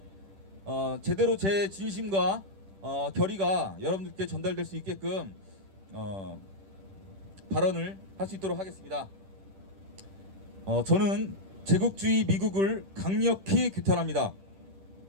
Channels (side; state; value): left; late; 10 ms